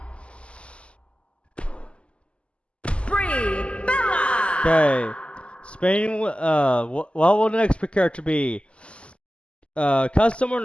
Brie Bella. Okay. Spinning. What will the next character be? Custom or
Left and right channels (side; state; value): right; late; 0.054 ms